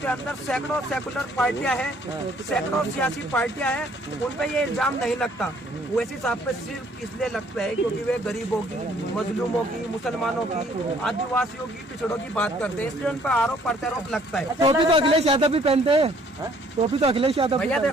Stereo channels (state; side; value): normal; both; correlation 0.61